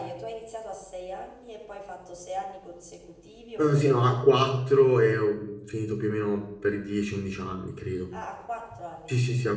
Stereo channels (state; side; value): identical; both; correlation 1.00